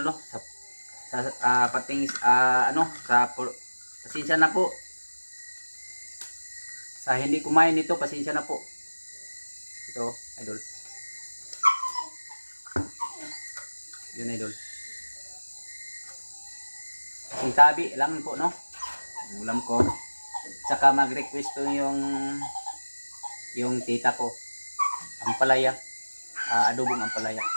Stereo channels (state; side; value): inverted; both; correlation -1.00